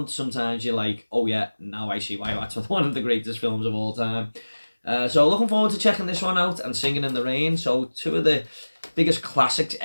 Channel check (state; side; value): inverted; both; correlation -1.00